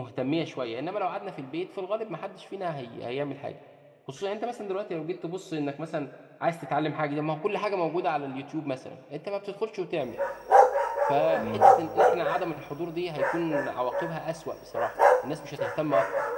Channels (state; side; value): identical; both; correlation 1.00